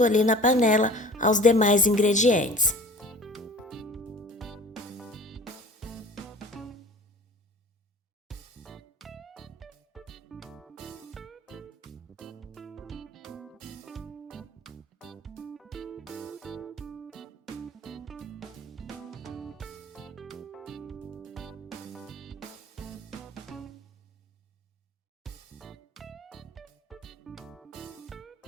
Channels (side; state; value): both; normal; correlation 0.44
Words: ali na panela aos demais ingredientes.